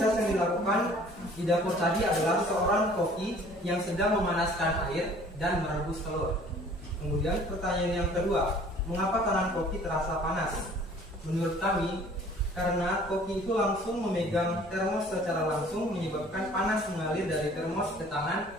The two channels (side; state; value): both; normal; correlation 0.52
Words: yang dilakukan di dapur tadi adalah seorang koki yang sedang memanaskan air dan merebus telur. Kemudian pertanyaan yang kedua, mengapa tangan koki terasa panas? Menurut kami, karena koki itu langsung memegang termos secara langsung menyebabkan panas mengalir dari termos ke tangan